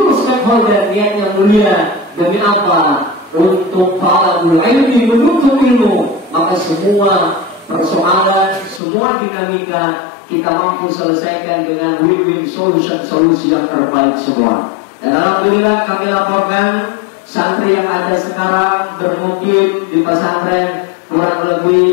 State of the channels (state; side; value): drops out; right; at 8.8 s